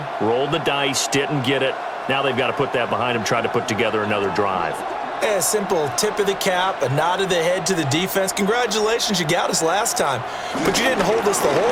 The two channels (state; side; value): identical; both; correlation 1.00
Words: rolled the dice, didn't get it. Now they've got to put that behind them, try to put together another drive. A simple tip of the cap, a nod of the head to the defense. Congratulations, you got us last time. But you didn't hold us the